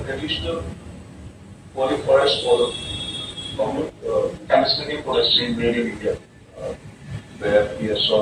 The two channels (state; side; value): identical; both; correlation 1.00